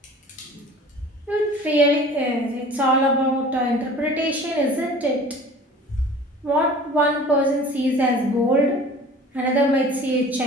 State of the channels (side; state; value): both; normal; correlation 0.44